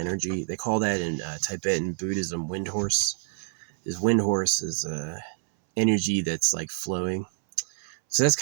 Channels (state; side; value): silent; left; 60 dB below the other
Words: energy. They call that in Tibetan Buddhism wind horse. Wind horse is energy that's like flowing. So that's